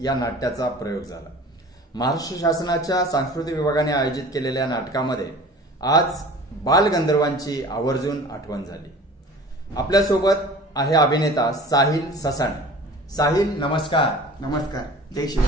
नाट्याचा प्रयोग झाला। महाराष्ट्र शासनाच्या सांस्कृतिक विभागाने आयोजित केलेल्या नाटकामध्ये आज बालगंधर्वांची आवर्जून आठवण झाली। आपल्यासोबत आहे अभिनेता साहिल ससाणे। साहिल, नमस्कार। नमस्कार, जय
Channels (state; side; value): normal; both; correlation 0.43